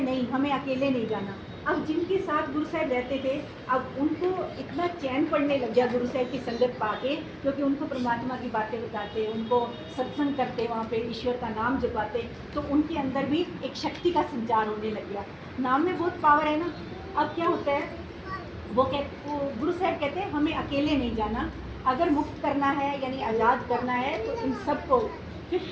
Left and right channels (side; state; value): both; identical; correlation 1.00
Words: नहीं, हमें अकेले नहीं जाना। अब जिनके साथ गुरु साहब रहते थे, अब उनको इतना चैन पड़ने लग गया गुरु साहब की संगत पाके, क्योंकि उनको परमात्मा की बातें बताते, उनको सत्संग करते, वहाँ पे ईश्वर का नाम जपाते, तो उनके अंदर भी एक शक्ति का संचार होने लग गया। नाम में बहुत पावर है ना। अब क्या होता है, वो गुरु साहब कहते हैं हमें अकेले नहीं जाना, अगर मुक्त करना है यानी आज़ाद करना है तो इन सबको